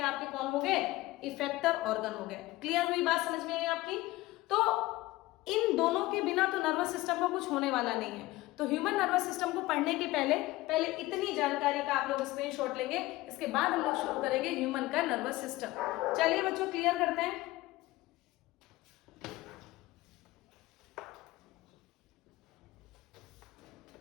आपके कौन हो गए? इफेक्टर ऑर्गन हो गए। क्लियर हुई बात? समझ में आई आपकी? तो इन दोनों के बिना तो नर्वस सिस्टम का कुछ होने वाला नहीं है। तो ह्यूमन नर्वस सिस्टम को पढ़ने के पहले इतनी जानकारी का आप लोग स्क्रीनशॉट लेंगे, इसके बाद हम लोग शुरू करेंगे ह्यूमन का नर्वस सिस्टम। चलिए बच्चों क्लियर करते हैं।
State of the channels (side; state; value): right; quieter; 18.6 dB